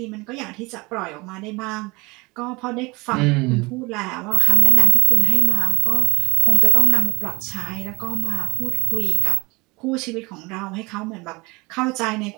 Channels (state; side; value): quieter; left; 24.6 dB